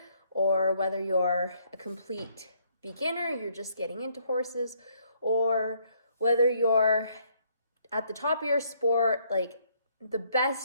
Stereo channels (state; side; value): inverted; both; correlation -0.68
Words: or whether you're a complete beginner, you're just getting into horses, or whether you're at the top of your sport, like the